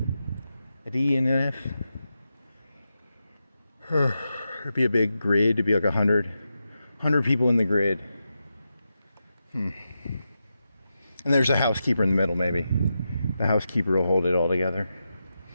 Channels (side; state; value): both; inverted; correlation -0.88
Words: A D and an F. It'd be a big grid. It'd be like 100 people in the grid. And there's a housekeeper in the middle, maybe. The housekeeper will hold it all together.